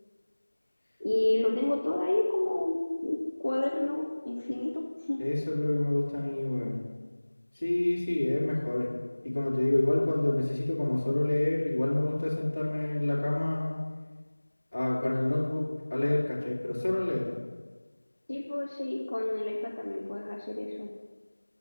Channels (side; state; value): both; inverted; correlation -1.00